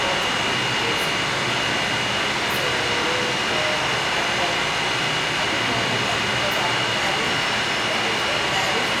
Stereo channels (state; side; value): identical; both; correlation 1.00